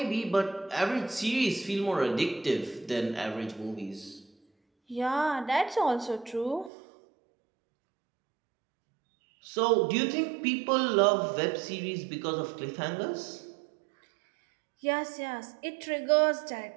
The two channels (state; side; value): drops out; left; at 6.7 s